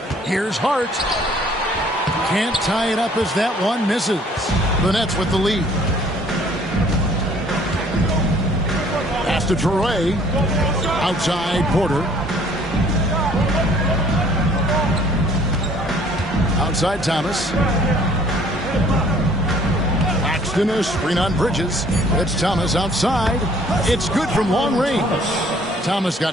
Here's Hart. Can't tie it up as that one misses. The Nets with the lead. Pass to Traoré. Outside Porter. Outside Thomas. Claxton a screen on Bridges. It's Thomas outside. It's good from long range. Thomas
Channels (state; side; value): normal; both; correlation 0.57